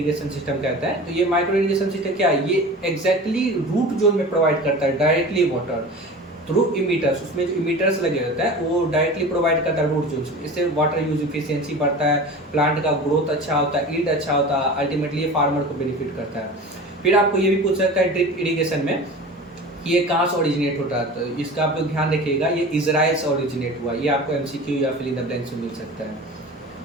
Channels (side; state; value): both; normal; correlation 0.35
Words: सिस्टम कहता है। तो ये माइक्रो इरिगेशन सिस्टम क्या है, ये एग्जैक्टली रूट जोन में प्रोवाइड करता है डायरेक्टली वाटर थ्रू इमीटर्स। उसमें जो इमीटर्स लगे होते हैं वो डायरेक्टली प्रोवाइड करता है रूट जोन। इससे वाटर यूज इफिशियंसी बढ़ता है, प्लांट का ग्रोथ अच्छा होता है, ईल्ड अच्छा होता है, अल्टीमेटली ये फार्मर को बेनिफिट करता है। फिर आपको ये भी पूछ सकता है ड्रिप इरिगेशन में ये कहाँ से ओरिजिनेट होता है, तो इसका आप लोग ध्यान रखिएगा, ये इजराइल से ओरिजिनेट हुआ। ये आपको एमसीक्यू या फिल इन द ब्लैंक से मिल सकता है।